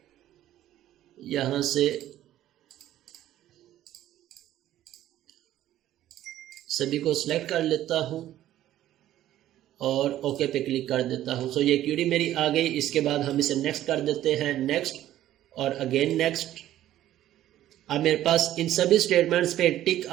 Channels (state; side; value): quieter; left; 13.0 dB